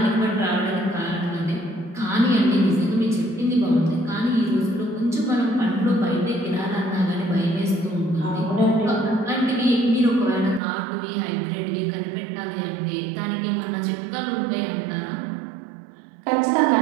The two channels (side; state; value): left; drops out; at 10.6 s